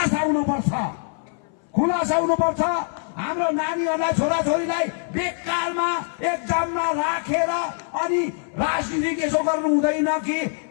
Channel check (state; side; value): silent; right; 59 dB below the other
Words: हुनुपर्छ। हाम्रो नानीहरूलाई, छोराछोरीलाई बेकारमा एक्जाममा राखेर अनि राजनीति यसो गर्नु हुँदैन कि